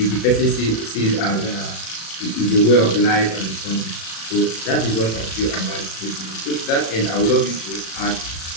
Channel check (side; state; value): right; late; 36 ms